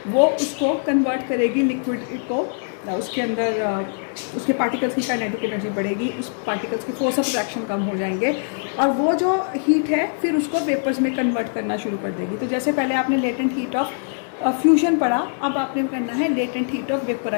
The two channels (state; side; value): silent; right; 64 dB below the other